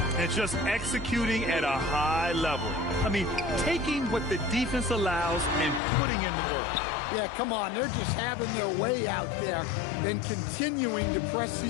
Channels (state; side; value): drops out; right; at 5.8 s